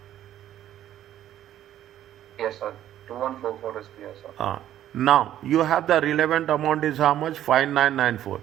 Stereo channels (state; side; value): quieter; left; 11.9 dB